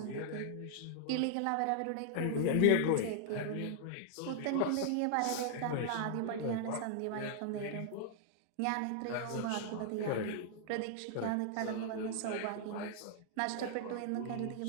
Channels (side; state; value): both; different; correlation -0.01